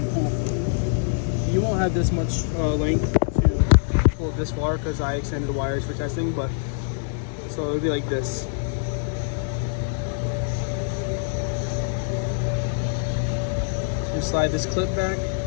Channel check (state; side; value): silent; right; digital silence